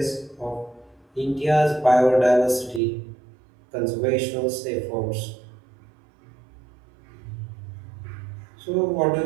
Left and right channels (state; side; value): drops out; left; at 2.8 s